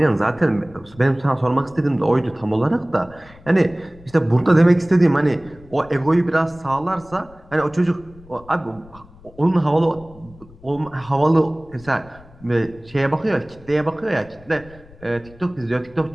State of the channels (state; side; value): noise; left; rumble, 23 dB below the sound